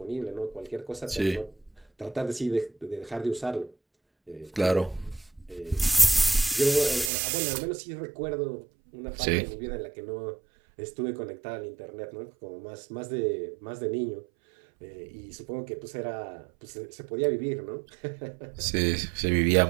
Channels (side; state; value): left; drops out; at 7.1 s